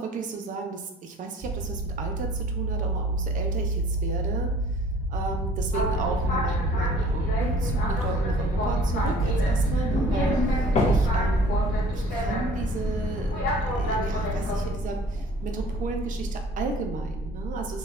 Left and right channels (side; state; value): both; normal; correlation 0.50